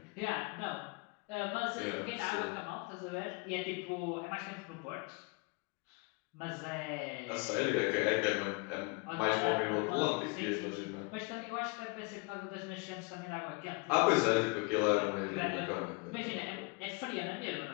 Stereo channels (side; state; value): right; quieter; 29.2 dB